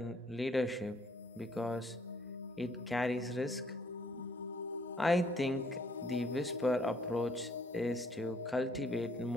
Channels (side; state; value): both; normal; correlation 0.65